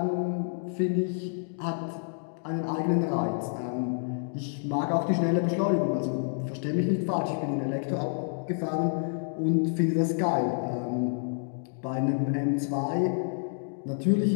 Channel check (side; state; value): right; silent; digital silence